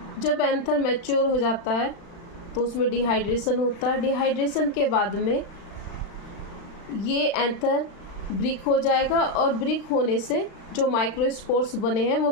जब एंथर मैच्योर हो जाता है तो उसमें डिहाइड्रेशन होता है। डिहाइड्रेशन के बाद में ये एंथर ब्रिक हो जाएगा, और ब्रिक होने से जो माइक्रोस्पोर्स बने हैं वो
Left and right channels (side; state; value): right; late; 36 ms